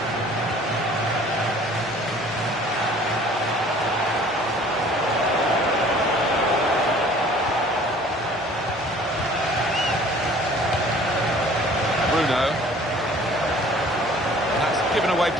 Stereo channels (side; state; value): both; normal; correlation 0.51